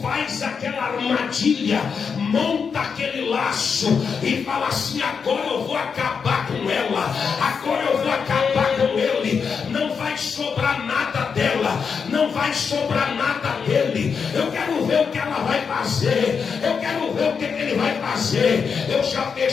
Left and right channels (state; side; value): quieter; right; 6.0 dB